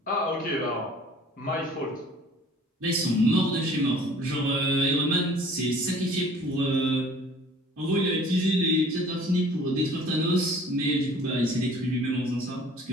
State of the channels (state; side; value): normal; both; correlation 0.51